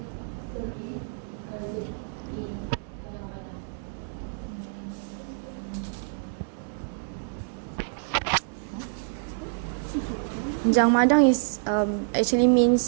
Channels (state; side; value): silent; left; digital silence